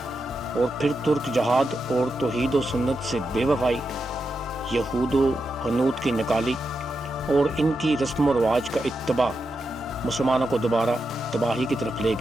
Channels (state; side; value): normal; both; correlation 0.87